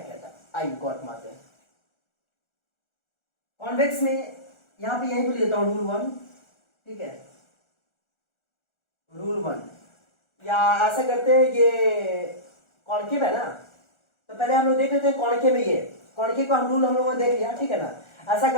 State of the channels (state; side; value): late; right; 1.4 ms